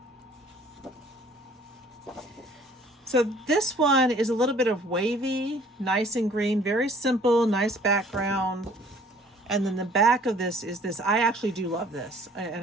So this one is a little bit of wavy, nice and green, very simple, nice background. And then the back of this is this. I actually do love this. And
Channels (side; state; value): both; normal; correlation 0.55